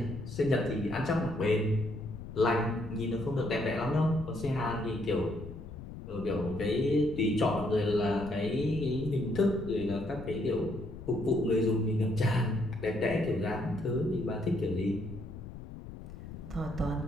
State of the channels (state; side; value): noise; left; rumble, 12 dB below the sound